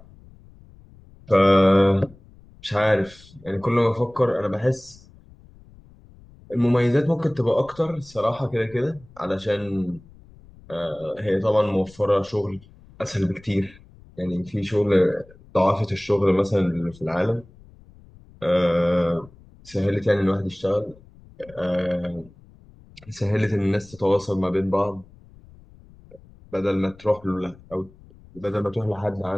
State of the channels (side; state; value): left; noise; rumble, 24 dB below the sound